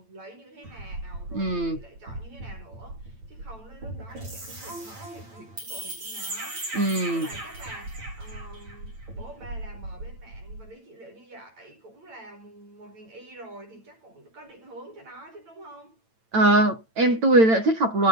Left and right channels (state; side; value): late; left; 8.9 ms